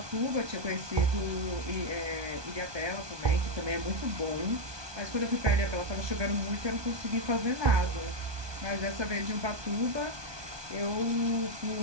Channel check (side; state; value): left; late; 1.2 ms